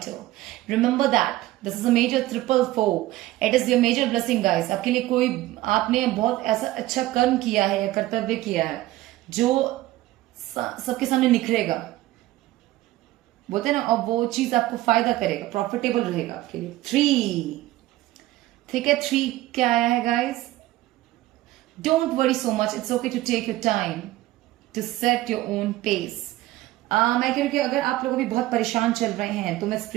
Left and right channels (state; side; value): quieter; left; 16.6 dB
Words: Remember that. This is a major 444. It is your major blessing, guys. आपके लिए कोई, आपने बहुत ऐसा अच्छा कर्म किया है या कर्तव्य किया है जो सबके सामने निखरेगा, बोलते हैं ना, और वो चीज आपको फायदा करेगा, प्रॉफिटेबल रहेगा आपके लिए। 3, ठीक है, 3 क्या आया है guys? Don't worry so much, it's okay to take your time to set your own pace. मैं कह रही हूँ कि अगर आप लोग भी बहुत परेशान चल रहे हैं तो मैं